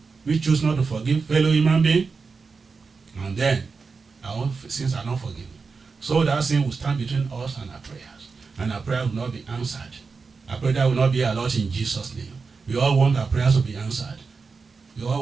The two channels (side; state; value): left; quieter; 4.7 dB